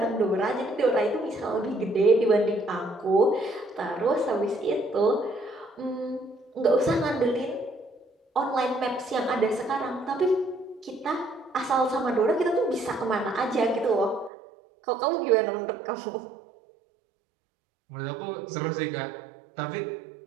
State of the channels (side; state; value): left; drops out; at 14.3 s